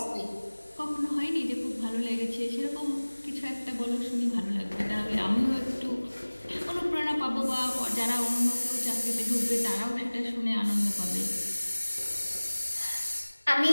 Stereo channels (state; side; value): inverted; both; correlation -1.00